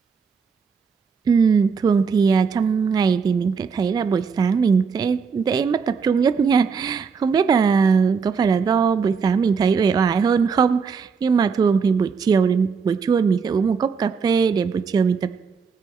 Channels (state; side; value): quieter; left; 5.7 dB